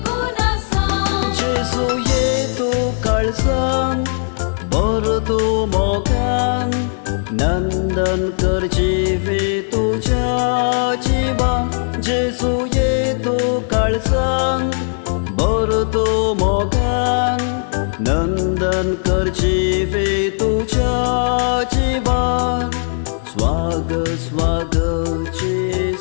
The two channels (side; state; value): right; silent; digital silence